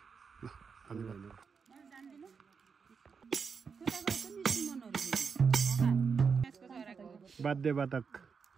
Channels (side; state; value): left; quieter; 5.7 dB